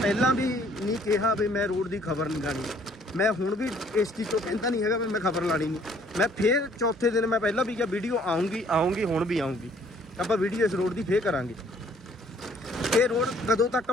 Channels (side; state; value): both; normal; correlation 0.60